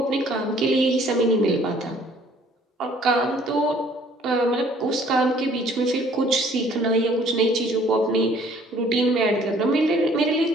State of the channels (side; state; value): both; normal; correlation 0.58